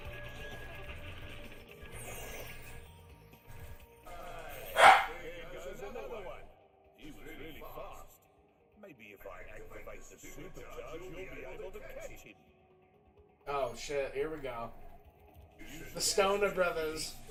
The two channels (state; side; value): identical; both; correlation 1.00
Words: Another one. He was really fast. Maybe if I activate the supercharge, you'll be able to catch him. Oh shit, here we go. The Stoner Brothers.